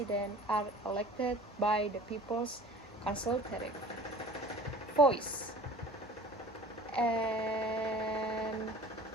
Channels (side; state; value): both; normal; correlation 0.44